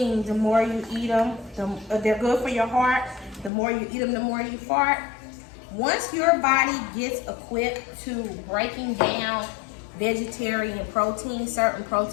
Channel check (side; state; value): right; drops out; at 3.5 s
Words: the more you eat them, they're good for your heart. The more you eat them, the more you fart. Once your body gets equipped to breaking down vegetarian protein, certain